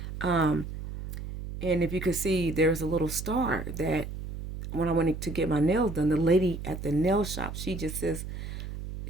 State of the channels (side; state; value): right; noise; hum, 8 dB below the sound